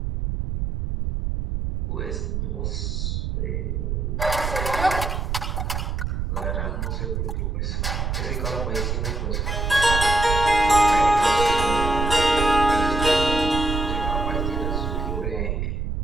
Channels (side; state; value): right; noise; rumble, 1 dB below the sound